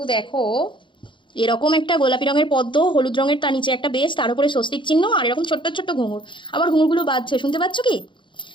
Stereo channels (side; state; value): right; late; 0.23 ms